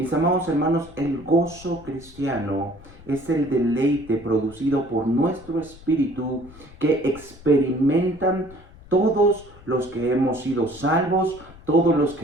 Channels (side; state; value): left; noise; rumble, 21 dB below the sound